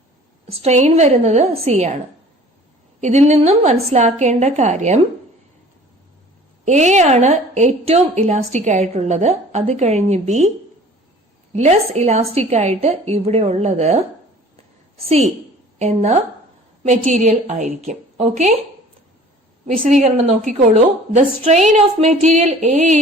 സ്ട്രെയിൻ വരുന്നത് സി ആണ്. ഇതിൽ നിന്നും മനസ്സിലാക്കേണ്ട കാര്യം എ ആണ് ഏറ്റവും ഇലാസ്റ്റിക് ആയിട്ടുള്ളത്, അത് കഴിഞ്ഞ് ബി, ലെസ് ഇലാസ്റ്റിക് ആയിട്ട് ഇവിടെ ഉള്ളത് സി എന്ന മെറ്റീരിയൽ ആയിരിക്കും. ഓക്കെ, വിശദീകരണം നോക്കിക്കോളൂ. The strain of material A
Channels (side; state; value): both; normal; correlation 0.48